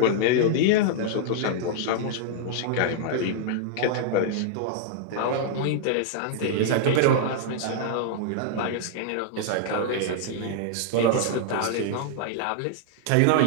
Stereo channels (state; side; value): different; both; correlation -0.01